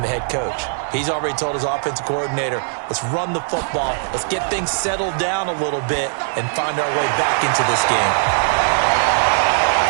the head coach. He's already told his offensive coordinator, let's run the football, let's get things settled down a little bit and find our way back into this game.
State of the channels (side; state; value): left; silent; digital silence